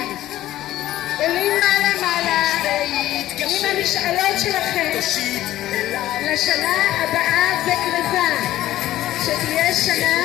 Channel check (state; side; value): quieter; right; 14.3 dB